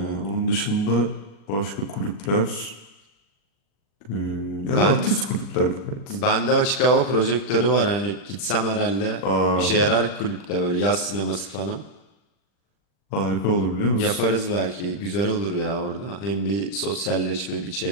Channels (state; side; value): late; right; 40 ms